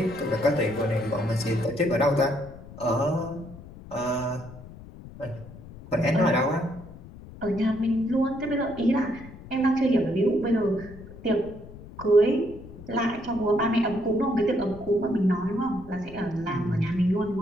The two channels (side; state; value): left; noise; rumble, 17 dB below the sound